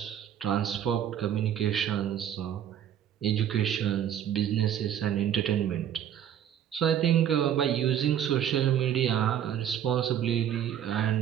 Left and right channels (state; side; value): quieter; left; 9.9 dB